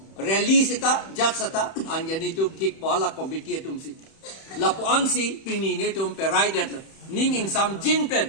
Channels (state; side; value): late; right; 31 ms